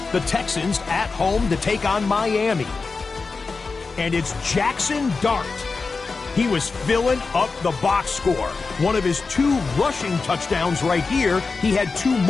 The Texans at home to take on Miami. And it's Jackson Dart. He was filling up the box score. One of his 2 rushing touchdowns right here. He had 2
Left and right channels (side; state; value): right; quieter; 4.3 dB